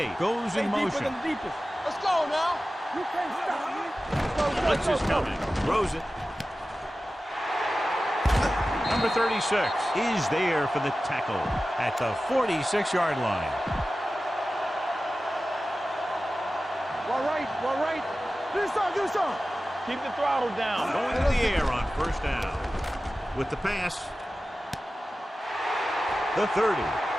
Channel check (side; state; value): both; normal; correlation 0.95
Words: goes in motion. Let's go now. You can't stop me. Blitz is coming. Throws it. Number 36 is there for the tackle at the 46-yard line. All right. Do some. Keep the throttle down. Going to the air on first down. With the pass. The 30.